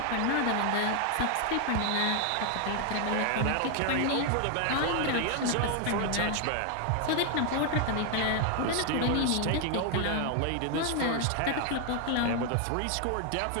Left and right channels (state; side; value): different; both; correlation 0.00